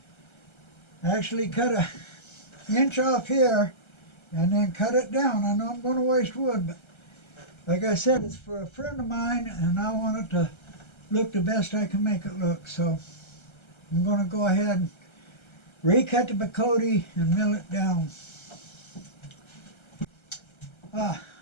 Actually cut an inch off here and then cut it down. I know I'm going to waste wood, but like I said, it's for a friend of mine and I want it to look the best I can make it look. So I'm going to go ahead and recut the Bacote and mill it down. I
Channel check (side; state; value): right; late; 1.3 ms